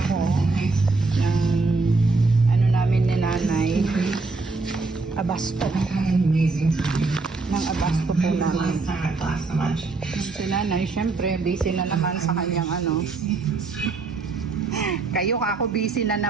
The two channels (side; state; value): left; quieter; 3.8 dB